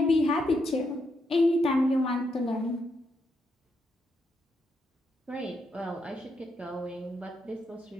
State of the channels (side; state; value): both; normal; correlation 0.80